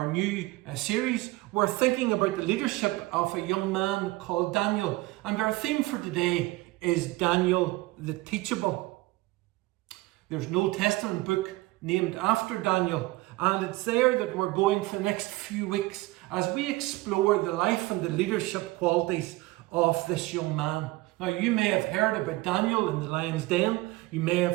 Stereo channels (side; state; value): left; quieter; 20.5 dB